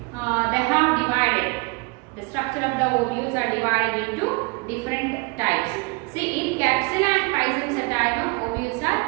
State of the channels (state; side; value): quieter; left; 28.8 dB